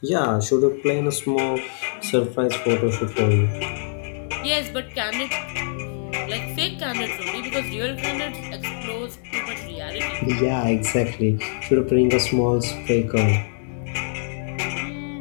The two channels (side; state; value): right; silent; digital silence